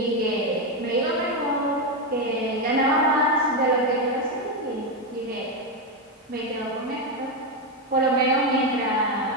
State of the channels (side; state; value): both; normal; correlation 0.08